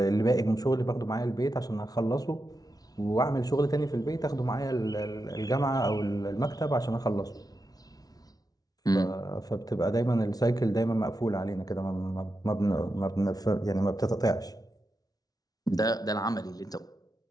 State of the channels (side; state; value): right; late; 0.18 ms